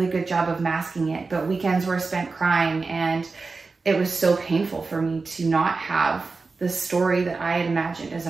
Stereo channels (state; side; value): quieter; left; 4.1 dB